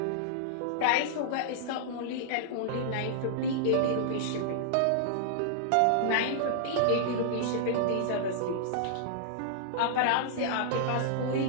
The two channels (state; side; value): different; both; correlation -0.02